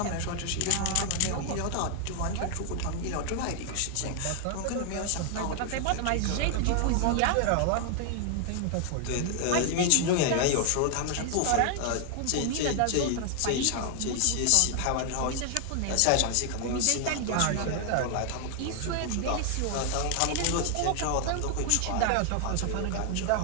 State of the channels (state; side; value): different; both; correlation 0.00